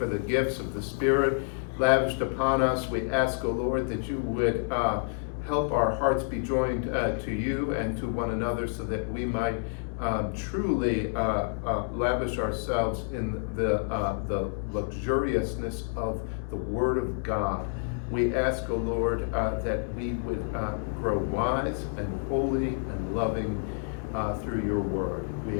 the gifts of the Spirit lavished upon us. We ask, O Lord, that you would help our hearts be joined to you and to one another, so that we might truly lavish ourselves in the luxuriousness of the Word of God. We ask, O Lord, that we would grow wise and holy and loving through your Word.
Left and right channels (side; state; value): right; silent; digital silence